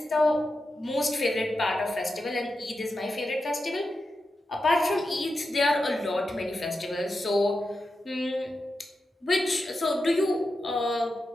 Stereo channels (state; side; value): normal; both; correlation 0.89